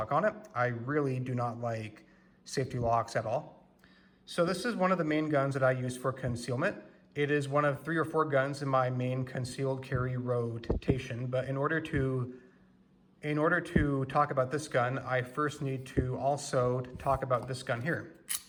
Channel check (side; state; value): both; identical; correlation 1.00